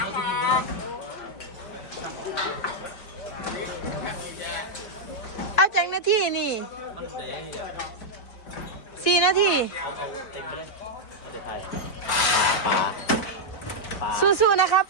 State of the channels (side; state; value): right; late; 4.5 ms